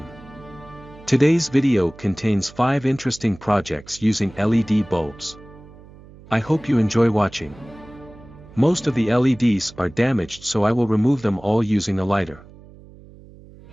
Today's video contains 5 interesting projects using LED bulbs. I hope you enjoy watching. Most of the LEDs are damaged, so I will remove them all using a lighter.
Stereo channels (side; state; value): right; noise; hum, 21 dB below the sound